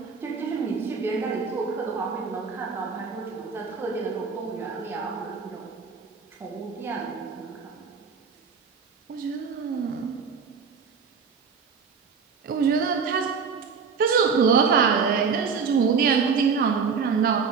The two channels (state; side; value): quieter; left; 5.7 dB